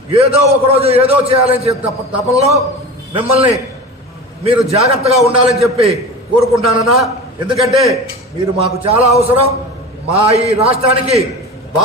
ఏదో ఒకరోజు ఏదో చేయాలని తపనలో మిమ్మల్ని మీరు జాగ్రత్తగా ఉండాలని చెప్పి కోరుకుంటానన్నా. ఎందుకంటే మీరు మాకు చాలా అవసరం, మా ఈ రాష్ట్రానికి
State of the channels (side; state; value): both; normal; correlation 0.32